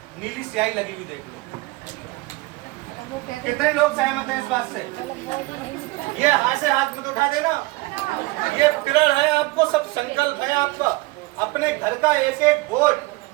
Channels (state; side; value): quieter; left; 22.2 dB